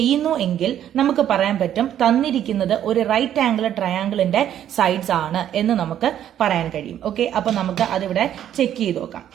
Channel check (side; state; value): left; quieter; 10.7 dB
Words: എങ്കിൽ നമുക്ക് പറയാൻ പറ്റും തന്നിരിക്കുന്നത് ഒരു റൈറ്റ് ആംഗിൾ ട്രയാംഗിളിന്റെ സൈഡ്സ് ആണ് എന്ന് നമുക്ക് പറയാൻ കഴിയും. ഓക്കെ, അപ്പൊ നമുക്ക് അതിവിടെ ചെക്ക് ചെയ്ത് നോക്കാം.